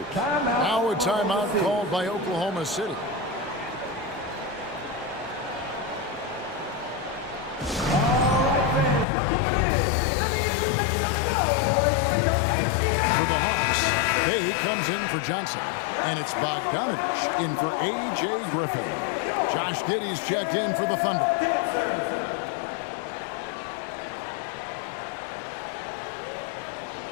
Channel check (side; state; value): right; drops out; at 9.1 s